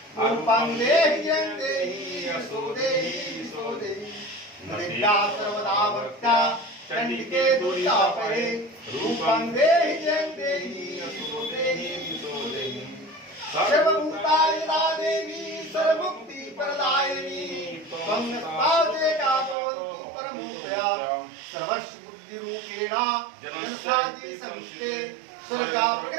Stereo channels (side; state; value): left; drops out; at 19.6 s